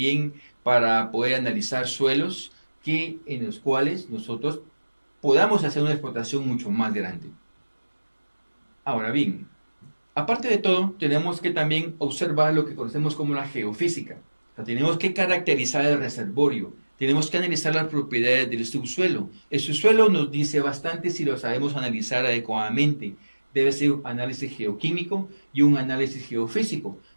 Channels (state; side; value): inverted; both; correlation -1.00